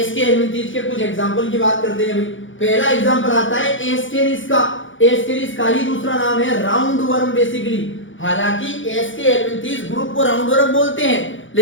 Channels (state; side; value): late; right; 0.56 ms